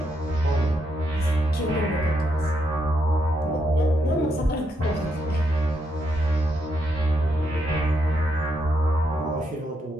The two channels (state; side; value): normal; both; correlation 0.79